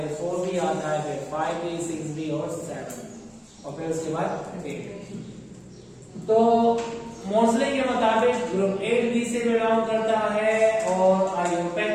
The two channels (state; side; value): identical; both; correlation 1.00